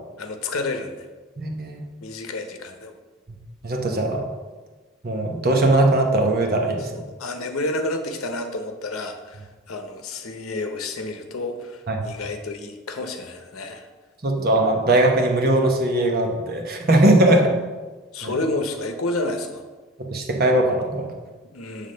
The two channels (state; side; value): normal; both; correlation 0.34